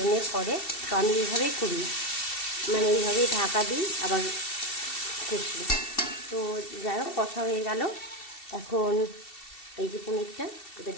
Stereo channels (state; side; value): late; right; 2.7 ms